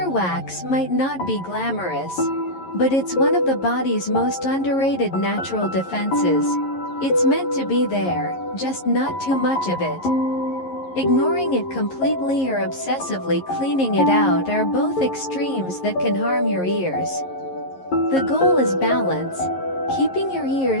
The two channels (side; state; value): right; late; 11 ms